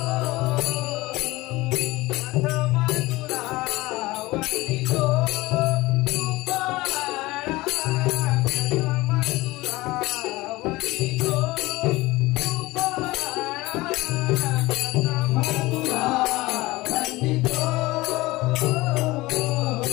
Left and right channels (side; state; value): right; quieter; 20.2 dB